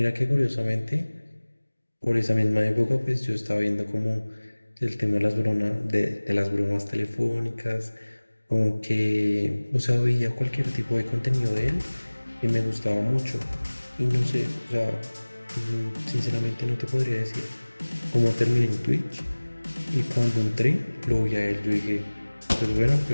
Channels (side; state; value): both; inverted; correlation -1.00